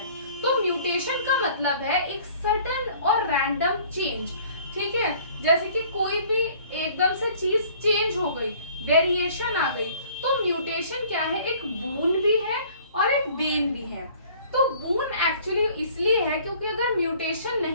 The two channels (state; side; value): inverted; both; correlation -0.53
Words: तो म्यूटेशन का मतलब है एक सडन और रैंडम चेंज, ठीक है। जैसे कि कोई भी एकदम से चीज चेंज हो गई, वेरिएशन आ गई, तो म्यूटेशन क्या है, एक बून भी है और एक बेन भी है। तो बून एक्चुअली इसलिए है क्योंकि अगर म्यूटेशन